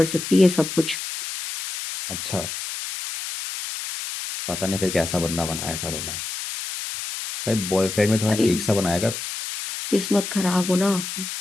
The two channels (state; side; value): noise; left; hiss, 6 dB below the sound